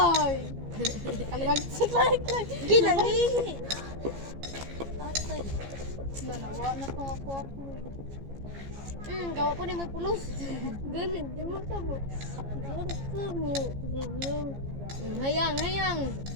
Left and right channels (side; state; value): left; late; 15 ms